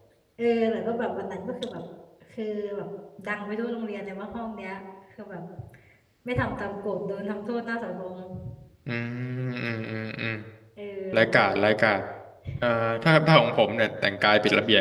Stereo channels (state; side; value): identical; both; correlation 1.00